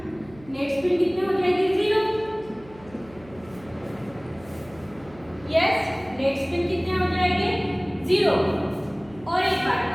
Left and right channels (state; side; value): noise; right; hum, 22 dB below the sound